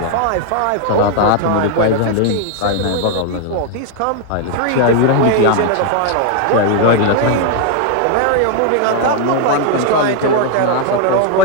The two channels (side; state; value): both; different; correlation 0.00